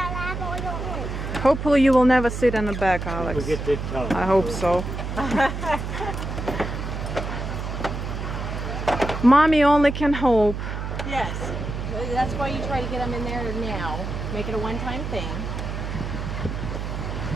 Hopefully you will never sit in the back, Alex. I hope so. Mommy only can hope. Yes. That's why you try to get them in there now. Make it a one-time thing.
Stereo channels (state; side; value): noise; right; hum, 5 dB below the sound